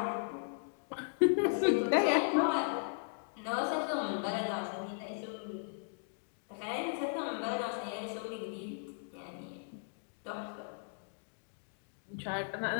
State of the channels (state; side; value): silent; right; digital silence